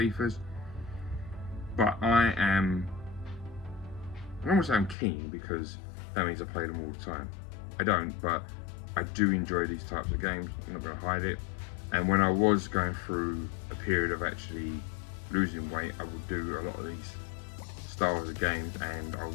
But I don't want to say I'm keen, because that means I play them all the time. I don't, but I do enjoy these types of games. I'm not going to hide it. And when I was going through a period of actually losing weight, I would do a lot of these styles of games, and I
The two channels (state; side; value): drops out; right; at 5.0 s